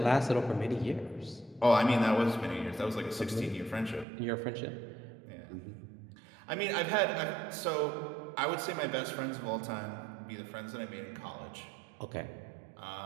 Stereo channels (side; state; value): left; drops out; at 4.0 s